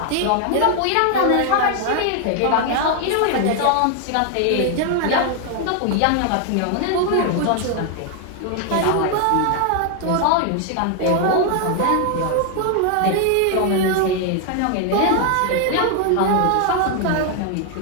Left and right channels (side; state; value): both; different; correlation 0.00